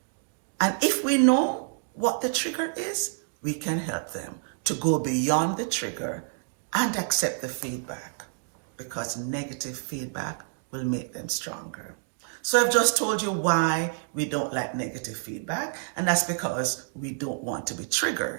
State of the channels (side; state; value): left; silent; digital silence